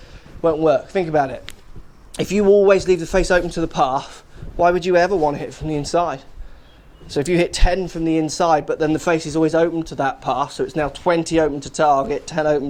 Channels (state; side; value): identical; both; correlation 1.00